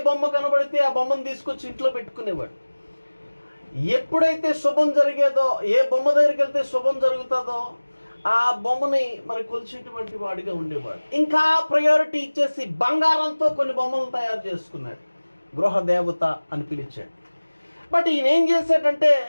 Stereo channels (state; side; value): inverted; both; correlation -1.00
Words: బొమ్మ కనబడితే ఆ బొమ్మను తీసుకొచ్చి ఇంట్లో పెట్టుకునేవాడు. ఎప్పుడైతే శుభం జరిగేదో, ఏ బొమ్మ దగ్గరికి వెళ్తే శుభం జరుగుతుందో ఆ బొమ్మని మరి కొలిచేటువంటి వాడిగా ఉండేవాడు. ఇంకా ప్రయారిటీ ఇచ్చేసి బంగారంతో కొన్ని బొమ్మలు తయారు చేసుకున్నాడు. గృహ దేవత అని పిలిచాడు. బట్ ఈయన ఏం చేశాడంటే,